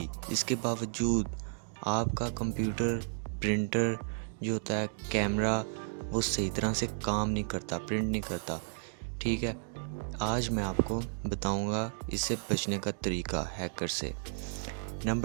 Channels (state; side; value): silent; left; digital silence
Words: इसके बावजूद आपका कंप्यूटर, प्रिंटर जो होता है, कैमरा, वो सही तरह से काम नहीं करता, प्रिंट नहीं करता। ठीक है, आज मैं आपको बताऊंगा इससे बचने का तरीका हैकर से।